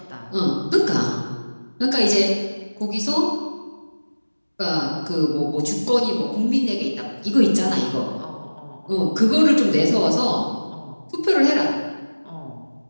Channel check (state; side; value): inverted; both; correlation -1.00